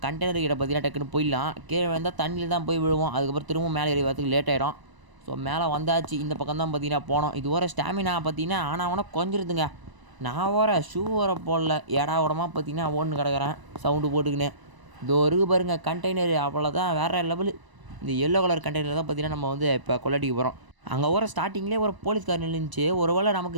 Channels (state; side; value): late; left; 1.0 ms